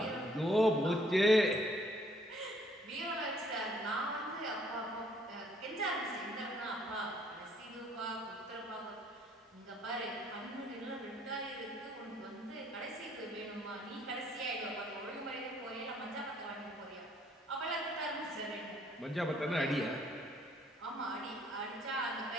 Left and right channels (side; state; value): both; normal; correlation 0.64